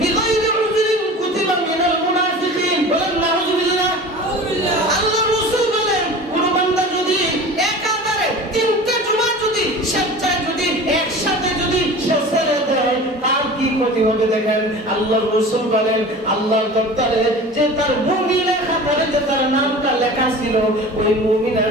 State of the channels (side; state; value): both; normal; correlation 0.37